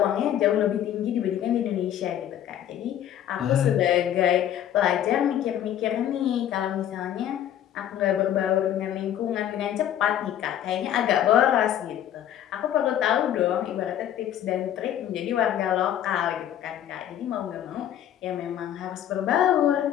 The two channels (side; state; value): right; quieter; 10.9 dB